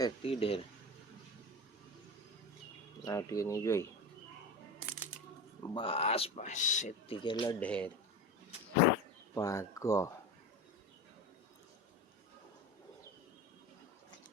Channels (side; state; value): both; normal; correlation 0.27